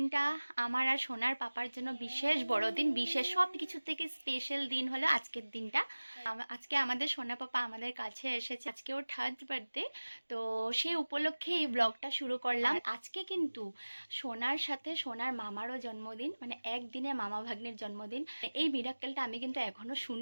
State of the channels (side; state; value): both; inverted; correlation -1.00